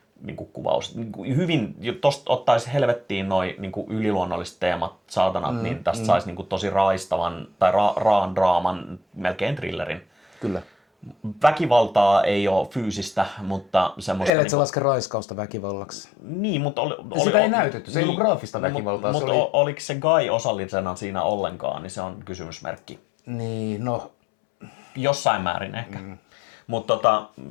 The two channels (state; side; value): drops out; right; at 14.3 s